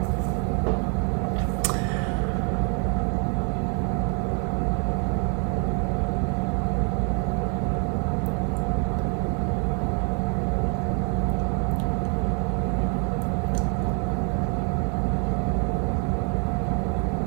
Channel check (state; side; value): quieter; left; 38.5 dB